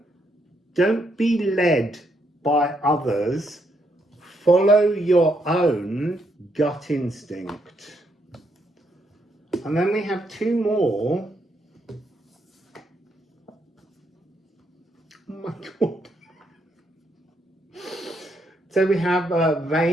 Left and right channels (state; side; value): normal; both; correlation 0.76